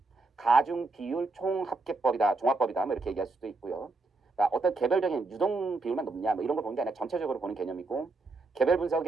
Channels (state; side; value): quieter; left; 3.5 dB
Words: 가중 비율 총합계법이다, 종합법이다, 뭐 이렇게 얘기할 수도 있고요. 그러니까 어떤 개별적인 유동 비율만 높냐, 뭐 이런 걸 보는 게 아니라 전체적으로 보는 개념이고, 개별